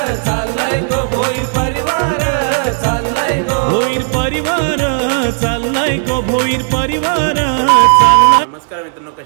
भोईर परिवार चाललाय गो भोईर परिवार चाललाय। नमस्कार मित्रांनो,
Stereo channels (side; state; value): left; silent; digital silence